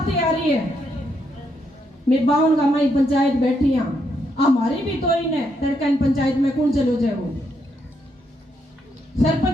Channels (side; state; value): both; normal; correlation 0.78